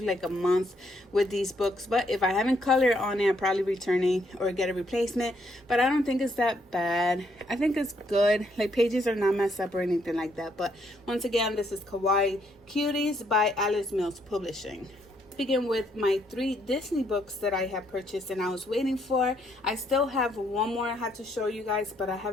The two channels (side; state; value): both; normal; correlation 0.72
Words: like a month with these books, but if I haven't colored on it, I'm probably returning or get a replacement. But I don't think it's that bad. I think it's good. Like, pages are not messed up or anything like that. But once again, this is Kawaii Cuties by Alice Mills Publishing. Begin with my 3 Disney books that I have purchased and I was waiting for. I still have one more I have to show you guys, but I